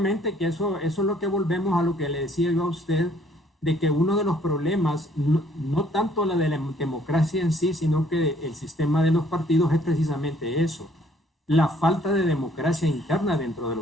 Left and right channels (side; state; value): both; normal; correlation 0.62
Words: que eso es lo que volvemos a lo que le decía yo a usted, de que uno de los problemas, no tanto la de la democracia en sí, sino que el sistema de los partidos es precisamente eso, la falta de democracia interna dentro de